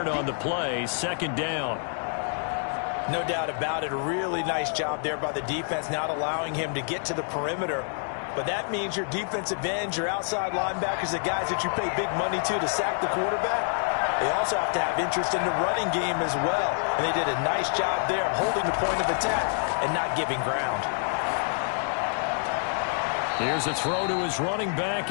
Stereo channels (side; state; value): right; silent; digital silence